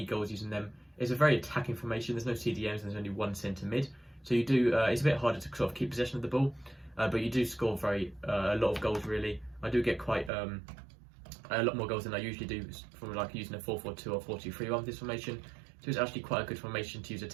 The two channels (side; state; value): left; drops out; at 10.3 s